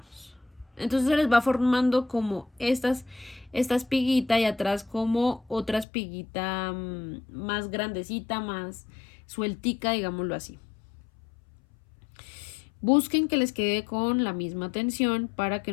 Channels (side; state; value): right; drops out; at 5.9 s